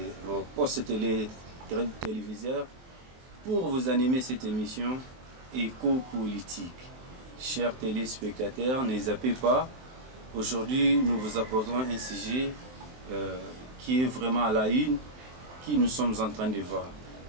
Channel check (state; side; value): late; left; 23 ms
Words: postes téléviseurs pour vous animer cette émission éco-politique. Chers téléspectateurs, ne zappez pas. Aujourd'hui, nous vous apportons un sujet qui est vraiment à la une, qui nous sommes en train de voir